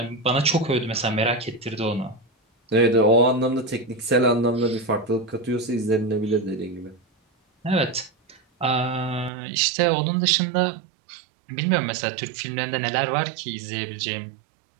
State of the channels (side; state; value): left; drops out; at 9.3 s